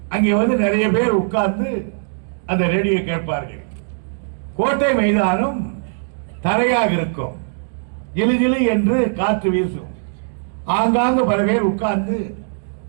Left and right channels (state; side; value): silent; left; digital silence